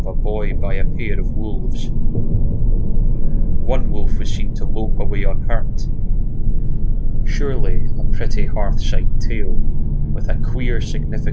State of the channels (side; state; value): both; identical; correlation 1.00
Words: a boy by a pair of wolves. One wolf was seen to lope away unhurt. Surely a pretty hearth-side tale, with a queer